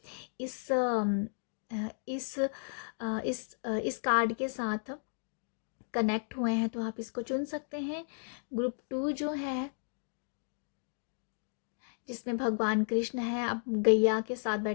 इस इस कार्ड के साथ कनेक्ट हुए हैं तो आप इसको चुन सकते हैं। ग्रुप 2 जो है, जिसमें भगवान कृष्ण है, अब गैया के साथ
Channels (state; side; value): silent; right; digital silence